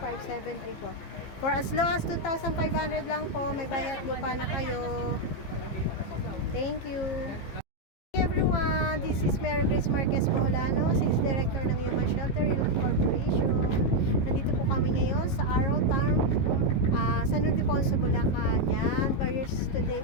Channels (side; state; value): right; late; 15 ms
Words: For as low as 2,500 lang po, may bayad lupa na kayo. Thank you. Hey everyone, this is Mary Grace Marquez Boholano, Sales Director ng Human Shelter Youth Corporation. Nandito po kami ngayon sa Arrow Town, San Ildefonso, Bulacan. Yan, buyers today